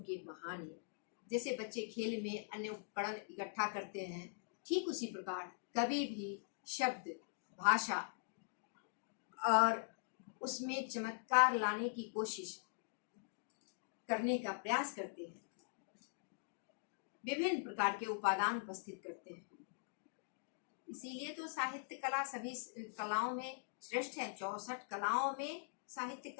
कहानी। जैसे बच्चे खेल में अन्य उपकरण इकट्ठा करते हैं, ठीक उसी प्रकार कवि भी शब्द, भाषा और उसमें चमत्कार लाने की कोशिश करने का प्रयास करते हैं। विभिन्न प्रकार के उपादान उपस्थित करते हैं। इसीलिए तो साहित्य कला सभी कलाओं में श्रेष्ठ है। 64 कलाओं में साहित्य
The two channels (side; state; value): right; silent; digital silence